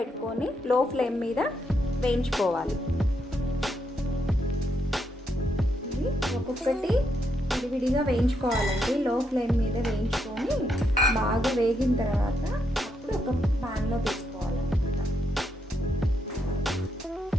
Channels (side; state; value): both; normal; correlation 0.79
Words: లో ఫ్లేమ్ మీద వేయించుకోవాలి. ఇవి ఒక్కొక్కటి విడివిడిగా వేయించుకోవాలండి. లో ఫ్లేమ్ మీద వేయించుకొని బాగా వేగిన తర్వాత అప్పుడు ఒక ప్యాన్లో తీసుకోవాలన్నమాట.